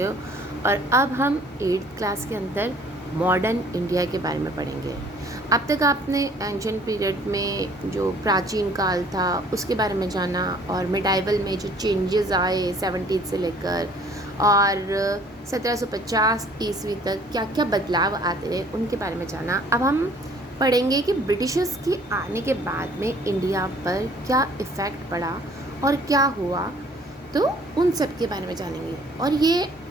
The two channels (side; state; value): both; normal; correlation 0.56